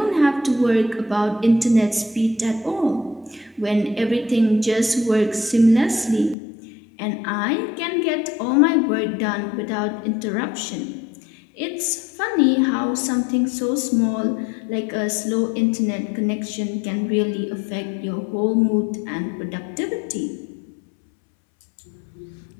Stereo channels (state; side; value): drops out; right; at 6.4 s